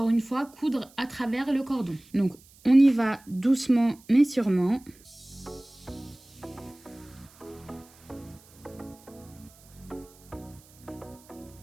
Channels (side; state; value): right; noise; hiss, 26 dB below the sound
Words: une fois, coudre à travers le cordon. Donc on y va doucement mais sûrement.